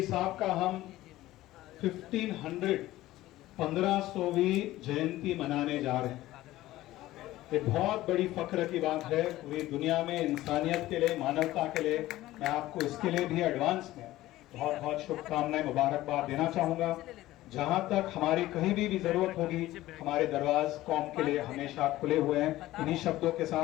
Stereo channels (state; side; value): quieter; right; 16.1 dB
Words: साहब का हम 1500वीं जयंती मनाने जा रहे हैं। ये बहुत बड़ी फख्र की बात है पूरी दुनिया में, इंसानियत के लिए, मानवता के लिए। मैं आपको इसके लिए भी एडवांस में बहुत बहुत शुभकामनाएं, मुबारकबाद देना चाहूंगा। जहां तक हमारी कहीं भी जरूरत होगी, हमारे दरवाज कौम के लिए हमेशा खुले हुए हैं। इन्हीं शब्दों के